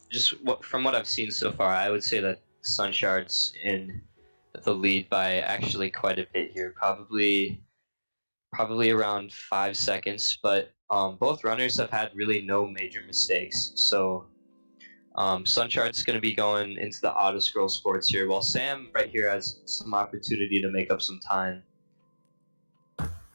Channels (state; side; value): inverted; both; correlation -1.00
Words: from what I've seen so far, I would say that SunShard's in the lead by actually quite a bit here, probably around 5 seconds. But both runners have had really no major mistakes, so SunShard's going to be going into the auto scroll sports here, while Sam right here has some opportunity to make up some time.